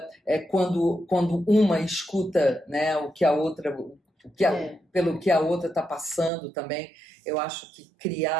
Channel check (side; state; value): left; drops out; at 6.3 s